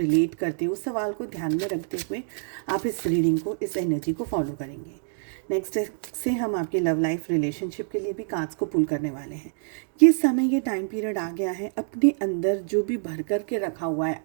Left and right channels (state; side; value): silent; left; digital silence